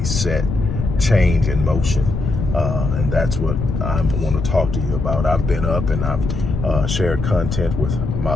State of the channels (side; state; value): left; noise; rumble, 3 dB below the sound